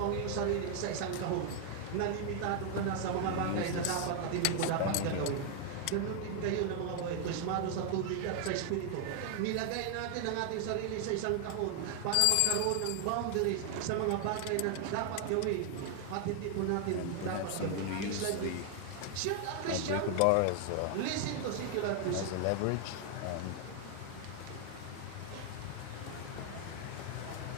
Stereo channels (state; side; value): different; both; correlation 0.00